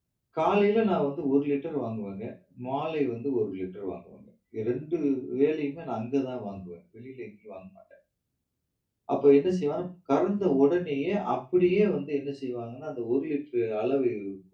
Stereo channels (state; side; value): identical; both; correlation 1.00